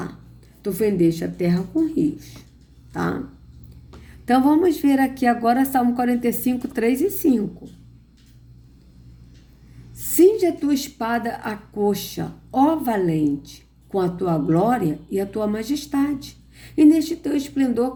tu fendeste a terra com rios. Tá? Então vamos ver aqui agora Salmo 45, 3 e 5. Cinge a tua espada à coxa, ó valente, com a tua glória e a tua majestade. E neste teu esplendor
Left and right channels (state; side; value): identical; both; correlation 1.00